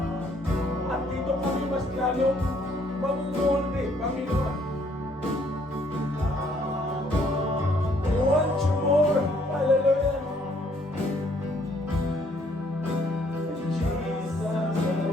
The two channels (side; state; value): both; normal; correlation 0.65